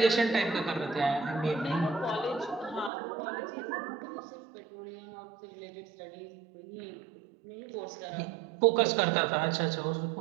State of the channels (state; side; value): drops out; left; at 2.9 s